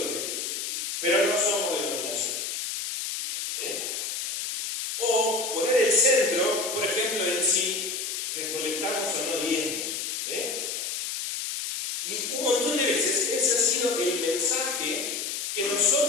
Pero no somos denominación. ¿Sí? O poner el centro, por ejemplo, en si recolectamos o no diezmos. ¿Sí? Y un montón de veces ese ha sido el mensaje que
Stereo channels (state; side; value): noise; left; hiss, 3 dB below the sound